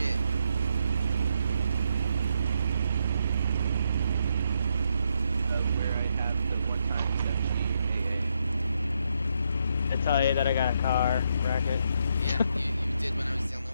Where I have the one time I tell you that I got a car bracket. Yeah, you did when I was the only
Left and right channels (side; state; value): both; inverted; correlation -0.78